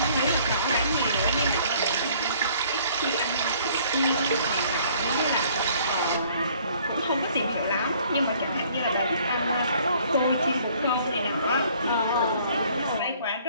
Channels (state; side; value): inverted; both; correlation -0.58